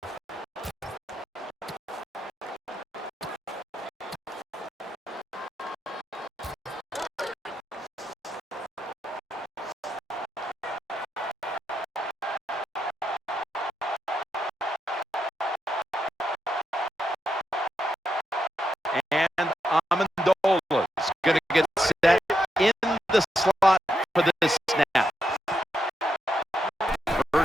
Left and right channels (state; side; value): normal; both; correlation 0.83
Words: And Amendola is going to get set in the slot for this snap.